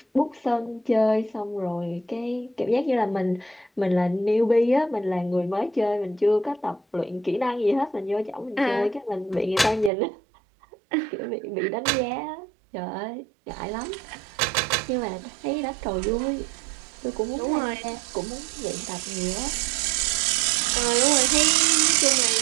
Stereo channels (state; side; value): drops out; left; at 9.9 s